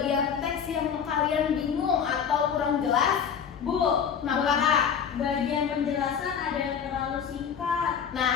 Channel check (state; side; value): quieter; right; 7.4 dB